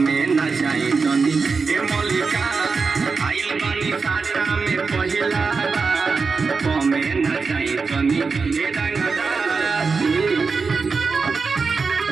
न जाई तनी ए मलिका आइल बनी साटा में पहिला कमे न जाई तनी ए रंगदारी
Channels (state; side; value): quieter; left; 4.8 dB